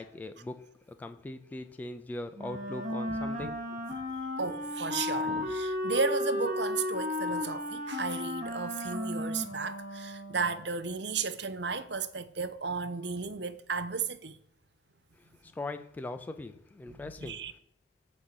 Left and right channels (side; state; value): both; normal; correlation 0.12